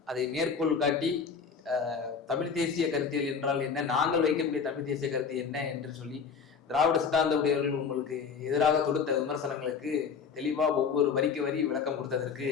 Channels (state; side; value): quieter; right; 6.1 dB